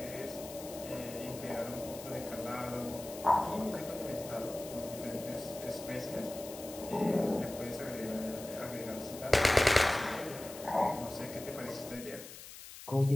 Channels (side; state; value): left; noise; hiss, 14 dB below the sound